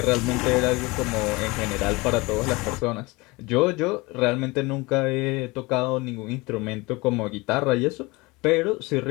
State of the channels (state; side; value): quieter; right; 23.8 dB